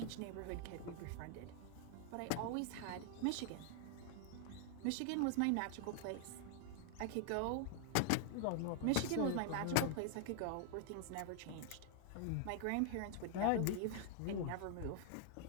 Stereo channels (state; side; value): different; both; correlation 0.00